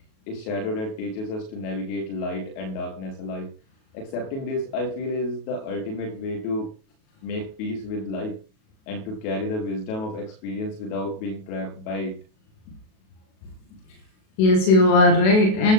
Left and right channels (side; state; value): right; late; 37 ms